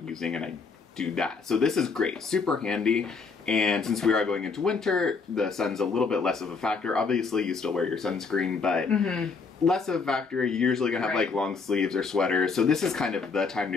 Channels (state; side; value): quieter; right; 4.8 dB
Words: and I do that. So this is great, super handy. And since we are going into winter, the sun's a little bit less of a factor. Obviously, you still wear your sunscreen, but less of a factor. You're usually gonna have like long sleeves or sweaters. So this is kind of the time